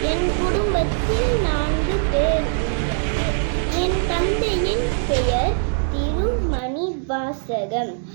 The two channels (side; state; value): left; silent; 65 dB below the other